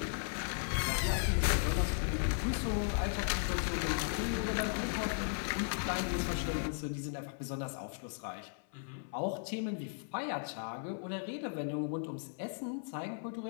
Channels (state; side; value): silent; right; 53 dB below the other